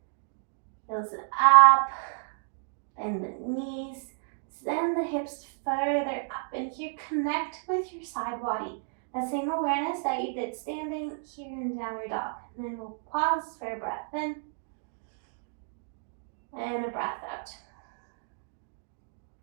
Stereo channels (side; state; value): left; silent; digital silence